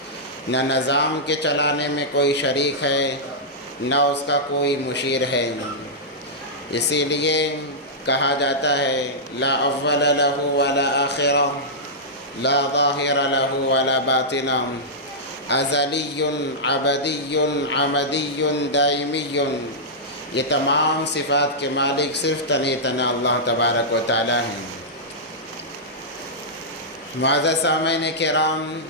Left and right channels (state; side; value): normal; both; correlation -0.12